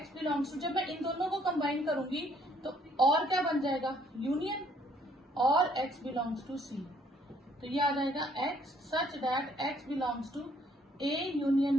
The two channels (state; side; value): normal; both; correlation 0.64